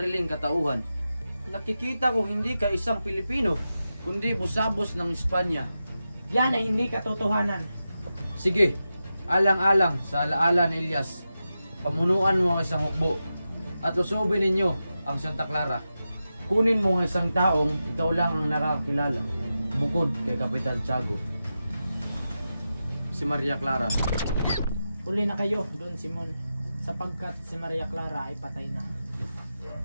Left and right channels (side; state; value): both; inverted; correlation -0.91